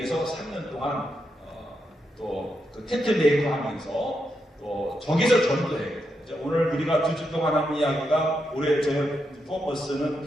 3년 동안 또 그 텐트 메이커 하면서 또 저기서 전도해요. 오늘 우리가 2주 동안 하는 이야기가 올해 저희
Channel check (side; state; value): both; normal; correlation 0.84